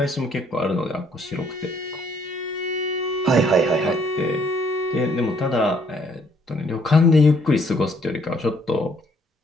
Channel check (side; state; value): both; normal; correlation 0.65